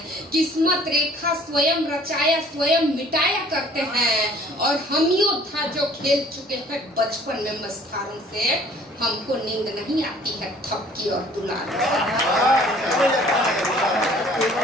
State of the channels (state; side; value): normal; both; correlation 0.54